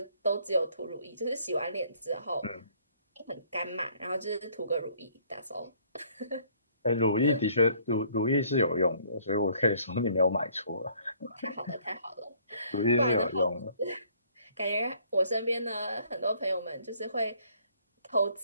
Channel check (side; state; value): both; inverted; correlation -0.61